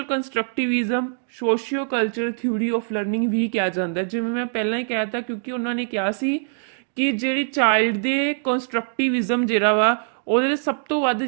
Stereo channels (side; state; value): left; silent; digital silence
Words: constructivism socio culture theory of learning ਵੀ ਕਿਹਾ ਜਾਂਦਾ, ਜਿਵੇਂ ਮੈਂ ਪਹਿਲਾਂ ਹੀ ਕਹਿ ਤਾ, ਕਿਉਂਕਿ ਉਹਨਾਂ ਨੇ ਕਿਹਾ ਸੀ ਕਿ ਜਿਹੜੀ ਚਾਈਲਡ ਦੇ ਕੰਸਟਰਕਟਿਵਿਜ਼ਮ ਜਿਹੜਾ ਵਾ ਉਹਦੇ ਸਭ ਤੋਂ ਵੱਧ